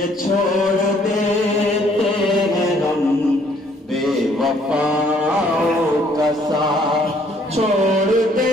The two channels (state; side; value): normal; both; correlation 0.63